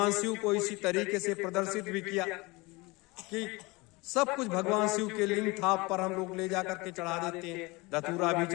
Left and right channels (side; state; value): right; quieter; 24.5 dB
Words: शिव को इसी तरीके से प्रदर्शित भी किया कि सब कुछ भगवान शिव के लिंग थाप पर हम लोग ले जाकर के चढ़ा देते हैं, धतूरा भी